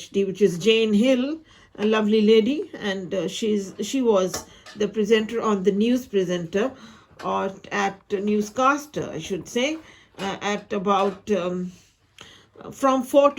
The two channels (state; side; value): identical; both; correlation 1.00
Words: which is Jane Hill, a lovely lady. And she was the presenter on the news presenter, or at newscaster, I should say, at about from 4